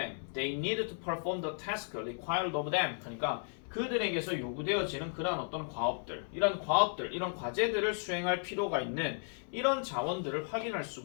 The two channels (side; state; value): right; silent; 55 dB below the other